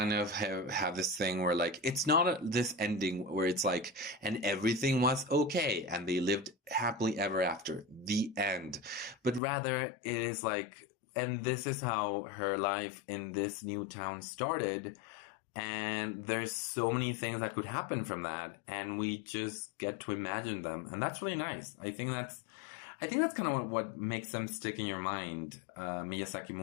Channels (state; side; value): drops out; right; at 9.4 s